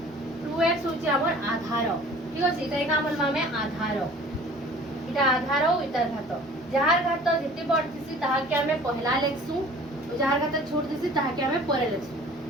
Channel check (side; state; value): both; normal; correlation 0.48